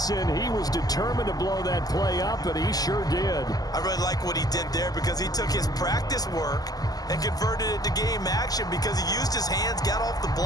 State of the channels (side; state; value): right; late; 0.18 ms